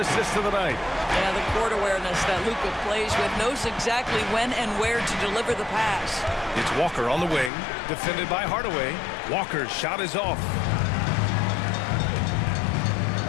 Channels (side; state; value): right; drops out; at 7.5 s